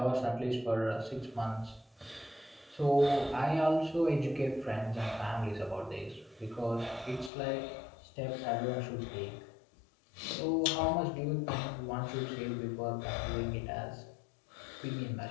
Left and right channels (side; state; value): right; drops out; at 7.3 s